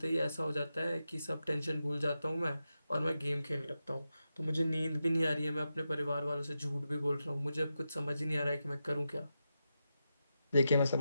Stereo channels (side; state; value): both; inverted; correlation -0.89